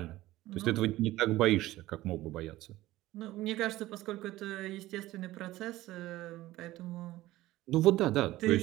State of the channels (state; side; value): quieter; left; 16.7 dB